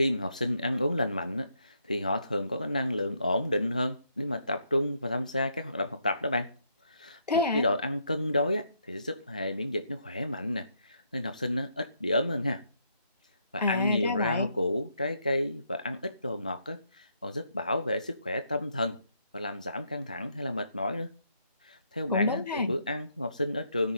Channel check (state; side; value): inverted; both; correlation -0.75